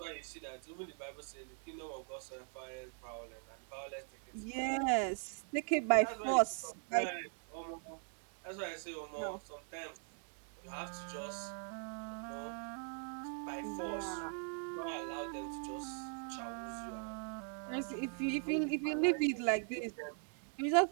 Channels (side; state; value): left; silent; 51 dB below the other